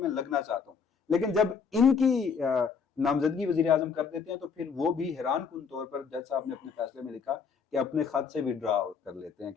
لگنا چاہتا ہوں۔ لیکن جب ان کی نامزدگی وزیر اعظم کر دیتے ہیں تو پھر وہ بھی حیران کن طور پر جج صاحب نے اپنے فیصلے میں لکھا کہ اپنے خط سے وڈرا کر لیتے ہیں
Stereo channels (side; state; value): right; quieter; 5.9 dB